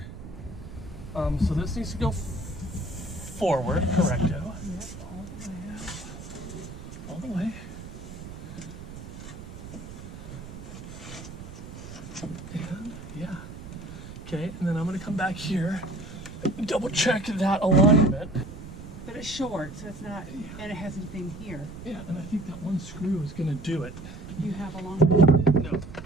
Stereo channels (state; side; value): noise; right; rumble, 12 dB below the sound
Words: So this needs to go forward, correcto. Yep, all the way. All the way. And yeah. Okay, and then I'm gonna come back here and double check that alignment. But it's short, so it's not, and it has anything here. Yeah, and I think that one screw is gonna do it. You have a long one? No.